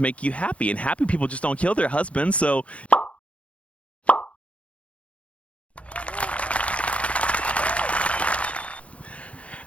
you happy, and happy people just don't kill their husbands. So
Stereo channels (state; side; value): late; right; 0.063 ms